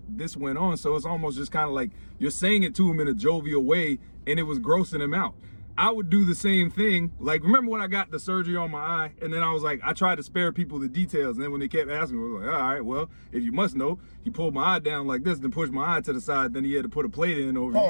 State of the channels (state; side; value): inverted; both; correlation -1.00